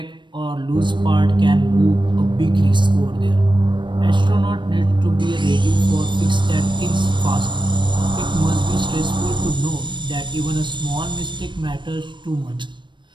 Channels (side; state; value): left; late; 0.23 ms